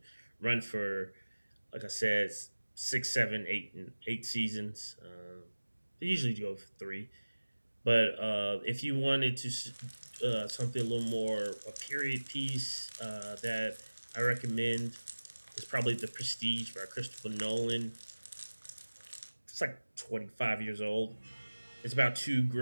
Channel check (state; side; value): inverted; both; correlation -1.00